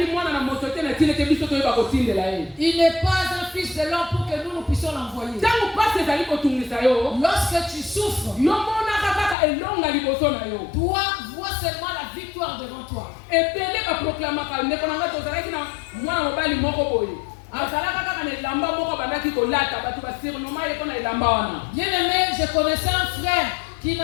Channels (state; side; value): drops out; right; at 9.3 s